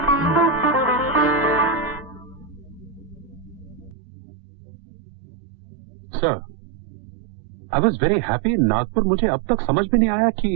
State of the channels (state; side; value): drops out; left; at 4.0 s